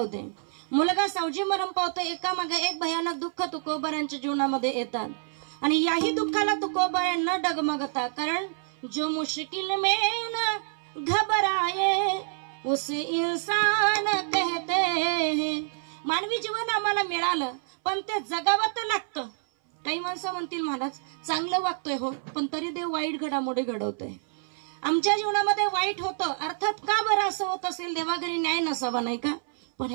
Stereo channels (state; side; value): silent; left; 60 dB below the other